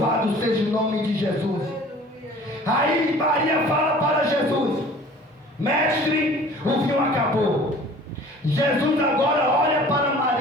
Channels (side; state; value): both; normal; correlation 0.47